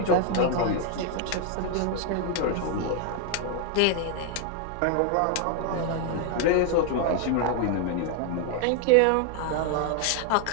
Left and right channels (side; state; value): both; different; correlation 0.00